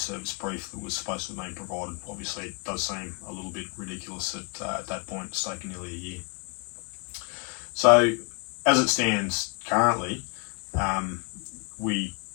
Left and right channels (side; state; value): right; quieter; 32.1 dB